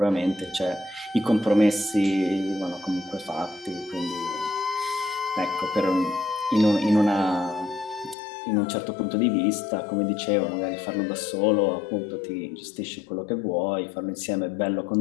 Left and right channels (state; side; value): drops out; right; at 8.2 s